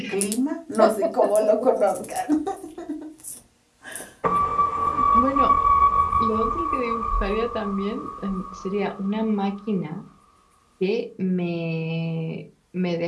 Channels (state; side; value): identical; both; correlation 1.00